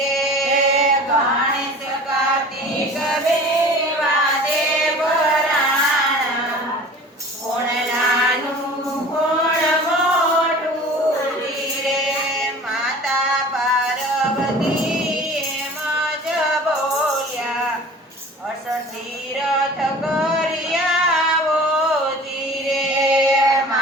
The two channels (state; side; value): normal; both; correlation 0.43